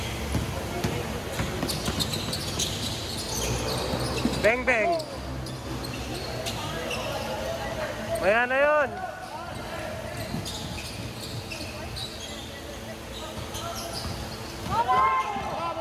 Bang bang. Maya na yun.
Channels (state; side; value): identical; both; correlation 1.00